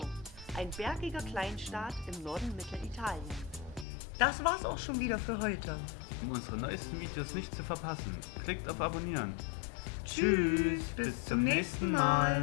ein bergiger Kleinstaat im Norden Mittelitaliens. Das war's auch schon wieder für heute. Um unsere neuesten Videos nicht zu verpassen, klickt auf Abonnieren. Tschüss, bis zum nächsten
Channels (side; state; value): right; drops out; at 3.9 s